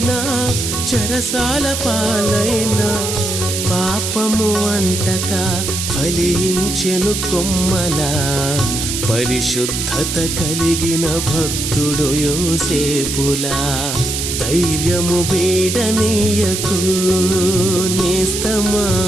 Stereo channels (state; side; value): noise; right; hiss, 3 dB below the sound